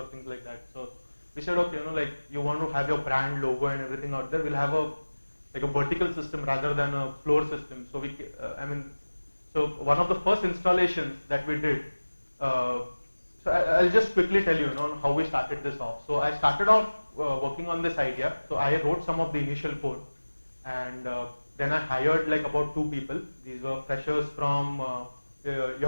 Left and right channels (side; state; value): both; inverted; correlation -1.00